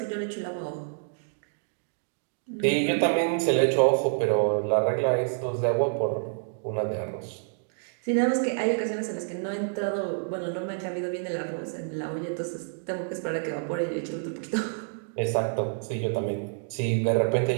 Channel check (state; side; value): silent; left; digital silence